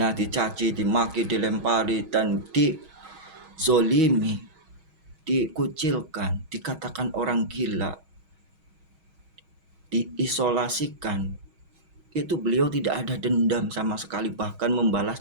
dicaci, dimaki, dilempari, dan dizolimi, dikucilkan, dikatakan orang gila, diisolasikan, itu beliau tidak ada dendam sama sekali, bahkan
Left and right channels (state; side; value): late; left; 6.3 ms